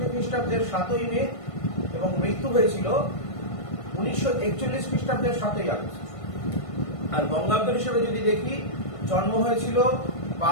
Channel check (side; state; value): right; late; 1.5 ms